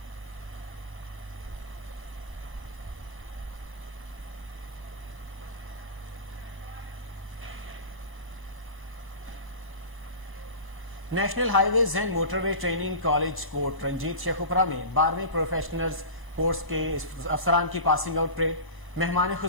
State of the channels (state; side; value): late; right; 1.0 ms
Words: National highways and motorway training college Kot Ranjit Sheikhupura में 12वीं प्रोफेशनल्स कोर्स के अफसरान की पासिंग आउट परेड। मेहमान